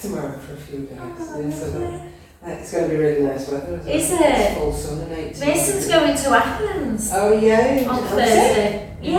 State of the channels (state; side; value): identical; both; correlation 1.00